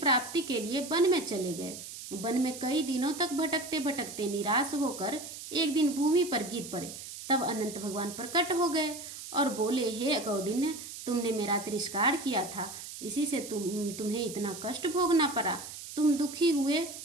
के लिए वन में चले गए। वन में कई दिनों तक भटकते भटकते निराश होकर एक दिन भूमि पर गिर पड़े। तब अनंत भगवान प्रकट हो गए और बोले, हे कौंडिन्य, तुमने मेरा तिरस्कार किया था, इसी से तुम्हें इतना कष्ट भोगना पड़ा। तुम दुखी हुए,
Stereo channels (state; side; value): noise; right; hiss, 11 dB below the sound